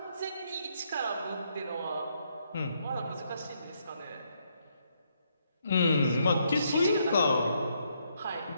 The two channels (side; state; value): both; inverted; correlation -0.74